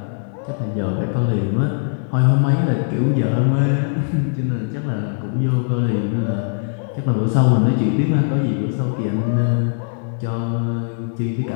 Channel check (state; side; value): silent; right; digital silence